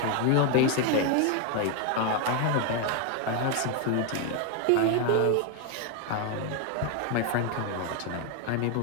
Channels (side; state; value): both; different; correlation 0.01